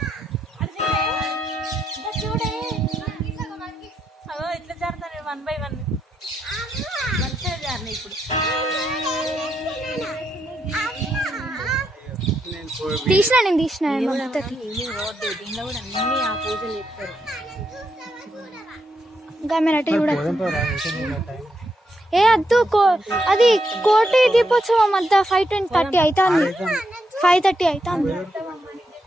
ఇట్లా జారుతాను 1 by 1 మంచిగా జారినాయి. ఇప్పుడు నేను తీసిన దీనిలో కూడా అన్ని ఆ పూజలు చేస్తారు. గమనట చూడ ఏ అద్దు అది కోటి దీపోత్సవం అంతా 5:30 అవుతుంది. 5:30 అవుతుంది.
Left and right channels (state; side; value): normal; both; correlation 0.81